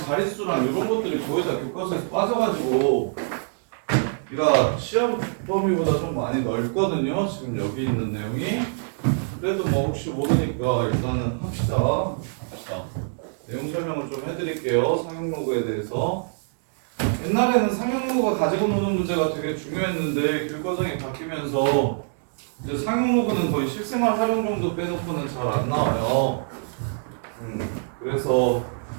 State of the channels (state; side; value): silent; left; digital silence